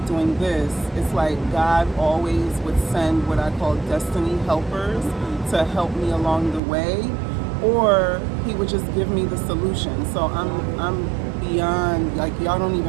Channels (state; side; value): drops out; left; at 6.6 s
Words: doing this? It's like God always would send what I call destiny helpers to help me along the way, or he would just give me the solution. So I'm beyond, like, y'all don't